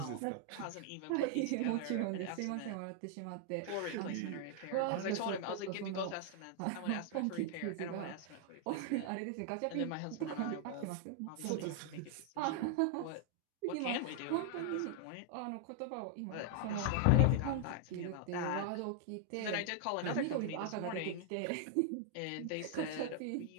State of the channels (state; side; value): different; both; correlation 0.00